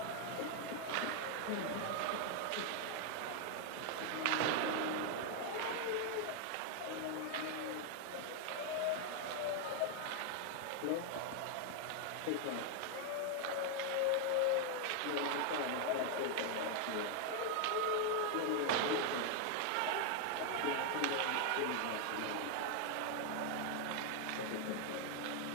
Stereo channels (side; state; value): both; different; correlation 0.00